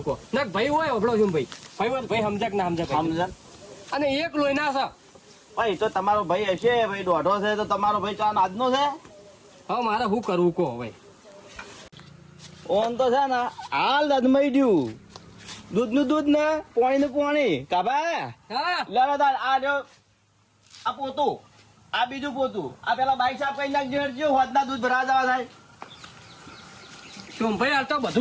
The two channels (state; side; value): identical; both; correlation 1.00